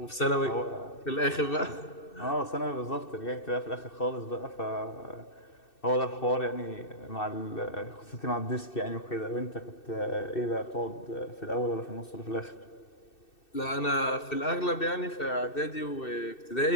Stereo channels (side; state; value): right; late; 2.6 ms